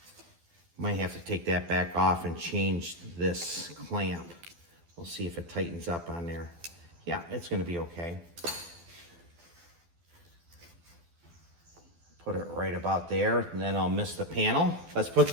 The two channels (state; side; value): late; left; 12 ms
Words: Might have to take that back off and change this clamp. We'll see if it tightens up on there. Yeah, it's gonna be okay. Put it right about there, and then I'll miss the panel. Let's put the